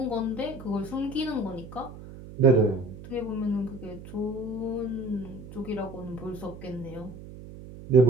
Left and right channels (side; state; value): right; noise; hum, 14 dB below the sound